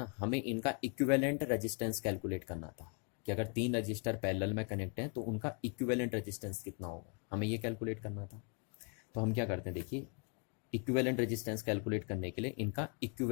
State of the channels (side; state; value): right; quieter; 38.3 dB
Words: हमें इनका इक्विवेलेंट रेजिस्टेंस कैलकुलेट करना था कि अगर 3 रजिस्टर पैरेलल में कनेक्ट हैं तो उनका इक्विवेलेंट रेजिस्टेंस कितना होगा, हमें ये कैलकुलेट करना था। तो हम क्या करते हैं, देखिए इक्विवेलेंट रेजिस्टेंस कैलकुलेट करने के लिए इनका